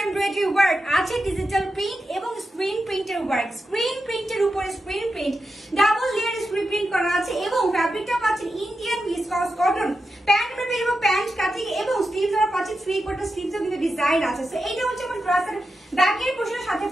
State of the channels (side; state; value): both; normal; correlation 0.89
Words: এমব্রয়ডারি ওয়ার্ক, আছে ডিজিটাল প্রিন্ট এবং স্ক্রিন প্রিন্টের ওয়ার্ক। স্ক্রিন প্রিন্টের উপরে screen print, double layer screen print করা আছে এবং ফ্যাব্রিকটা পাচ্ছেন Indian viscose cotton. Pant material এবং প্যান্ট কাটিং এবং স্লিভসটা পাচ্ছেন 3/4 স্লিভসও কিন্তু ডিজাইন আছে। সো এইটা হচ্ছে আমার ড্রেসের ব্যাকের পোরশনের সাথে